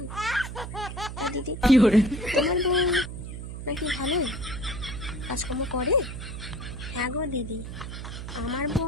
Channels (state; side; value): noise; right; hum, 8 dB below the sound